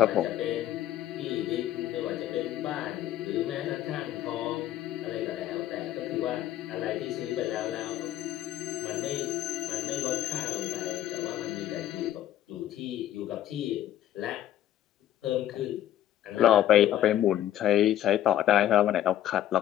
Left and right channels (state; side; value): quieter; right; 12.2 dB